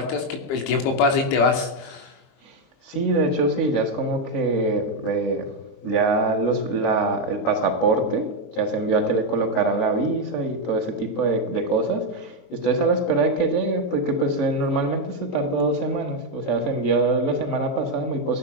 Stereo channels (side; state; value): right; late; 23 ms